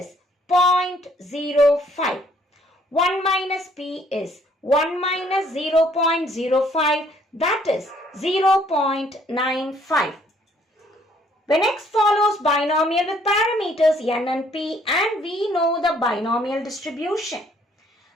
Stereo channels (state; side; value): normal; both; correlation 0.64